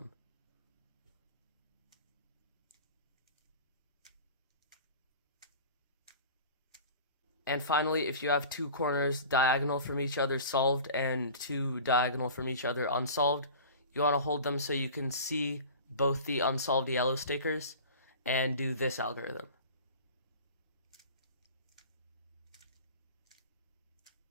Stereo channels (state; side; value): inverted; both; correlation -0.39